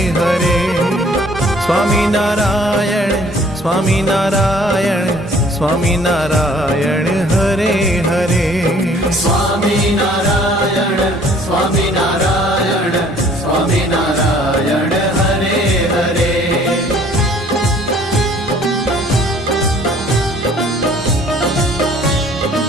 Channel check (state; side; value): normal; both; correlation 0.56